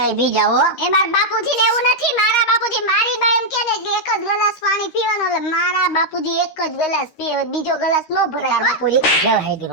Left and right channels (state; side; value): late; right; 13 ms